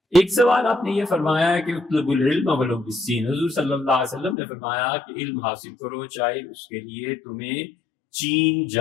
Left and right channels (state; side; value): drops out; right; at 4.4 s